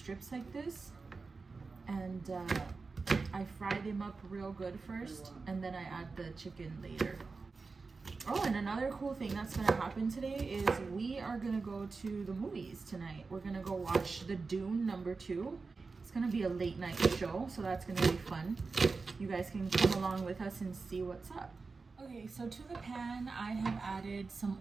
like this, and I fry them up real good first, and then I add the chicken later. Oh, and another cool thing that's gonna happen today is we are gonna go to the movies tonight. We're gonna go watch the Dune #2. It's gonna be a late night show, so that's gonna be fun. You guys can come along with us and see what's up. Okay, so to the pan, I have added some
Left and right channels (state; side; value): quieter; left; 4.3 dB